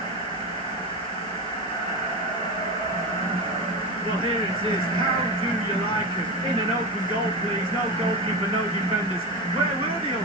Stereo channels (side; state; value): left; noise; hiss, 25 dB below the sound